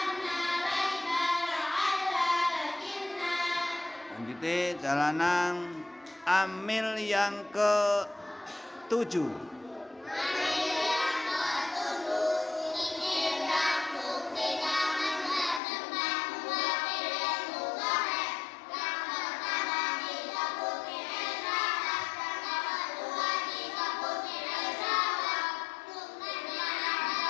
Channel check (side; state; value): right; drops out; at 15.6 s